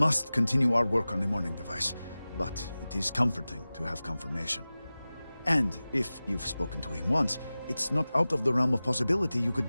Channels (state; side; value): inverted; both; correlation -0.97